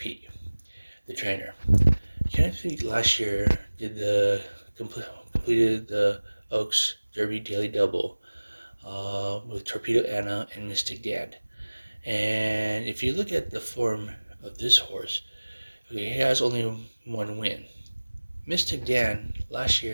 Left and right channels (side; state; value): both; inverted; correlation -1.00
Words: the trainer. Kenneth McPeek last year completed the Oaks Derby daily double with Torpedo Anna and Mystic Dan. And if you look at the form of this horse, he has only one win. Mystic Dan last